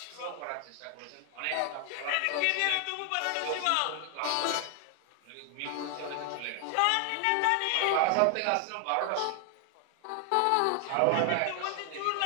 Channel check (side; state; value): both; different; correlation 0.00